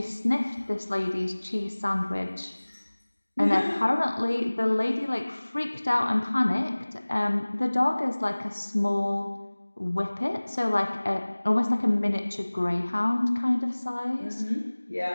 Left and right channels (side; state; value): both; inverted; correlation -1.00